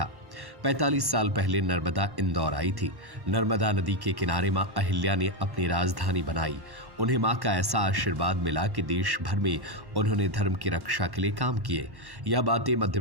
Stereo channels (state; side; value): late; left; 1.1 ms